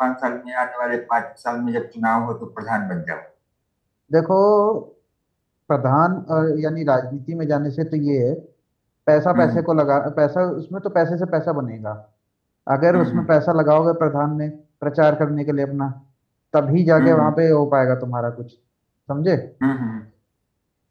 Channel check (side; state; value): both; identical; correlation 1.00